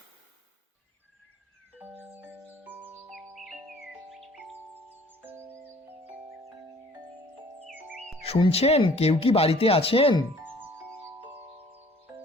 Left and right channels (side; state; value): both; normal; correlation 0.54